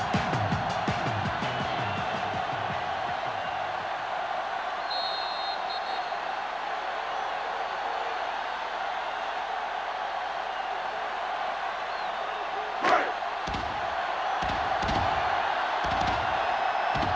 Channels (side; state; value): both; identical; correlation 1.00